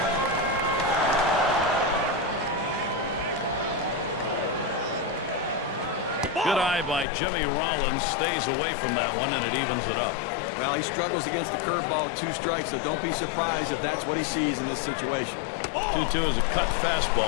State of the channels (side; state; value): right; drops out; at 7.1 s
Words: Good eye by Jimmy Rollins. Stays away from that one, and it evens it up. Well, he struggles against the curveball, 2 strikes, so don't be surprised if that's what he sees in this situation. 2-2 is a cut